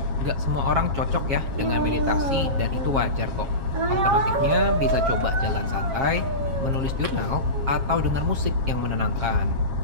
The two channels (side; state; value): left; late; 7.4 ms